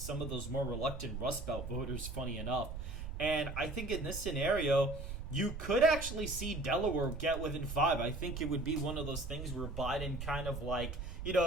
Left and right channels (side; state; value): right; noise; rumble, 7 dB below the sound